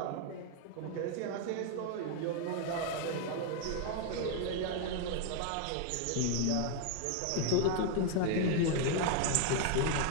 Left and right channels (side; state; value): both; different; correlation 0.00